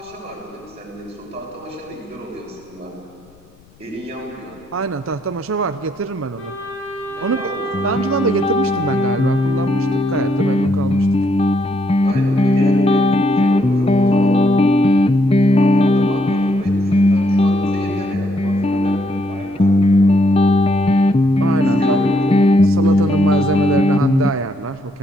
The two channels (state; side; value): noise; left; rumble, 30 dB below the sound